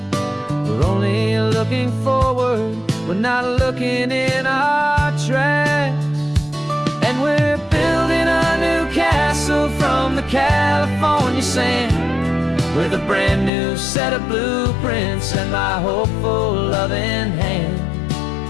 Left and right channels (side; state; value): right; drops out; at 13.5 s